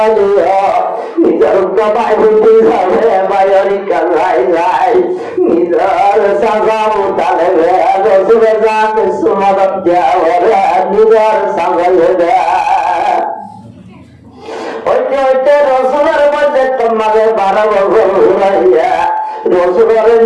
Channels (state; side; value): identical; both; correlation 1.00